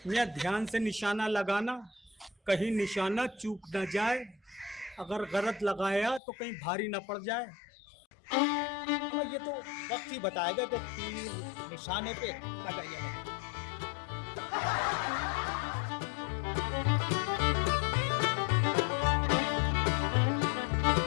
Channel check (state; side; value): drops out; right; at 6.2 s